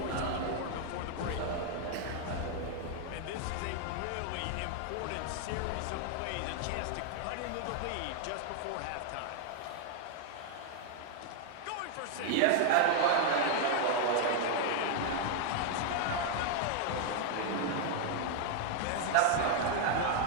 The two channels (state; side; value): different; both; correlation 0.00